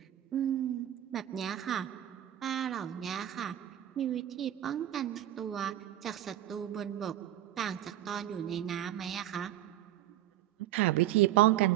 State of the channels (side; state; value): left; quieter; 12.5 dB